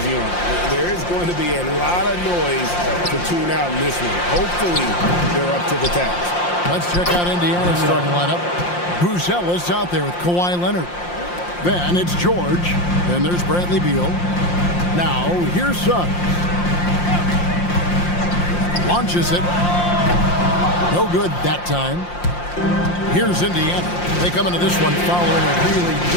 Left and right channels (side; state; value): right; late; 5.7 ms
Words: on them. There is going to be a lot of noise to tune out in this one. Hopefully, they're up to the task. Let's check out Indiana's starting lineup. Buzelis out there with Kawhi Leonard. Then it's George. Then there's Bradley Beal. Now, here's Suggs. Launches it. No good that time. Here's Indiana. They come into this one following a really